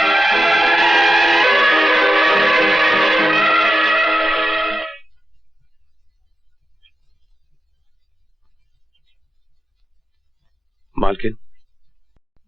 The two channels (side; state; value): both; normal; correlation 0.92